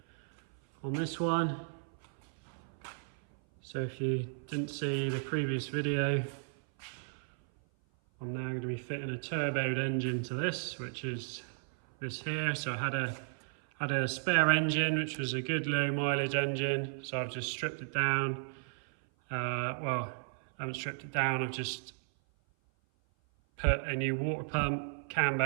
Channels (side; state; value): left; silent; 55 dB below the other